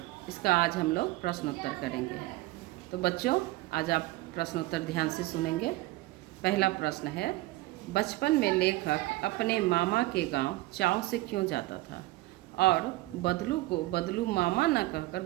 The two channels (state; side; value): quieter; left; 19.0 dB